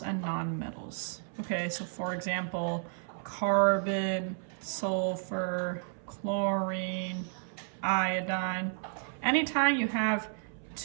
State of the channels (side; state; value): left; silent; 56 dB below the other